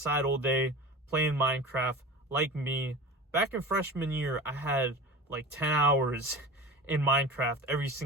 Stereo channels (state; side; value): normal; both; correlation 0.34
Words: all day playing Minecraft like me. Back in freshman year, I had like 10 hours in Minecraft every